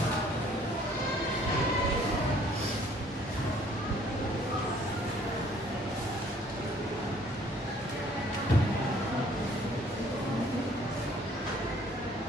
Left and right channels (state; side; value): normal; both; correlation 0.59